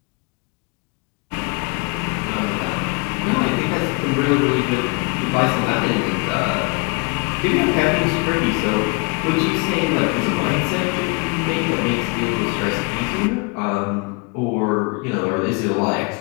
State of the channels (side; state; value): right; quieter; 30.9 dB